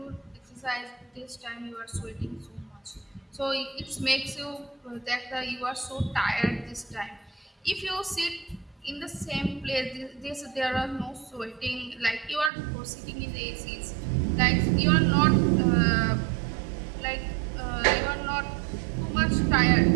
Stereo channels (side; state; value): left; drops out; at 12.5 s